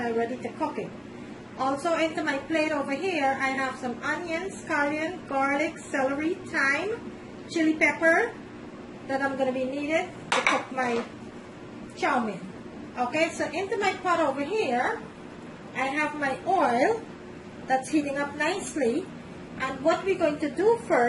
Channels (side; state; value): both; identical; correlation 1.00